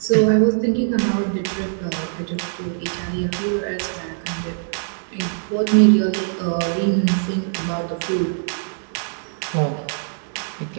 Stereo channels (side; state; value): left; silent; digital silence